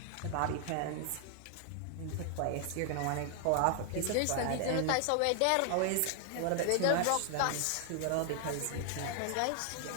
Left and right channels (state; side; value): different; both; correlation 0.00